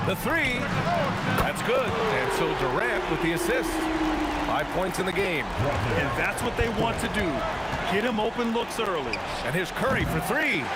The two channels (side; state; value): both; identical; correlation 1.00